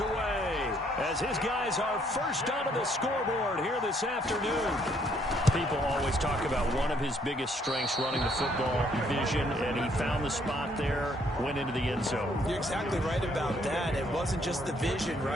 as his guys are first onto the scoreboard here this afternoon. People always talk about one of his biggest strengths running the football, vision, and he found the spot there, went into the end zone. You're exactly right about that. It wasn't just the vision,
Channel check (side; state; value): both; normal; correlation 0.67